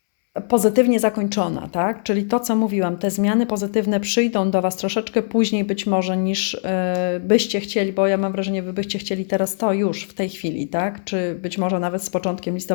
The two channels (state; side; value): silent; right; 64 dB below the other